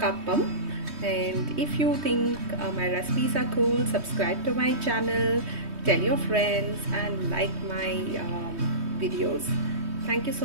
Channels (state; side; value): late; left; 3.2 ms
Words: And if you think my recipes are cool, subscribe to my channel, tell your friends, and like my videos. Thank you